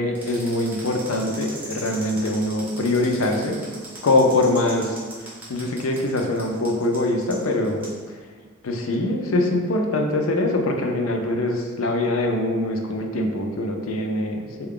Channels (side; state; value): both; normal; correlation 0.25